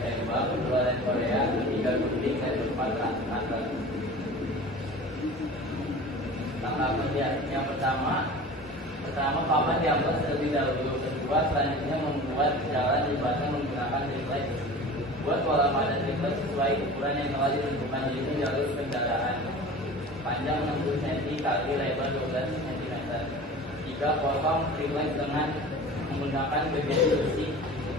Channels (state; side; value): normal; both; correlation 0.38